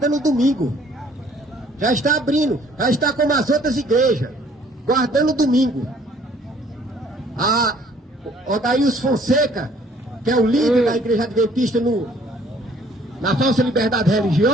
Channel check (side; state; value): both; normal; correlation 0.59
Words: o domingo. Já está abrindo, já está como as outras igrejas, guardando o domingo. A Odaíus Fonseca que é o líder da Igreja Adventista na falsa liberdade